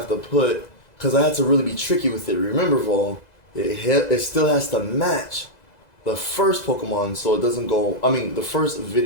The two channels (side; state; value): right; late; 2.0 ms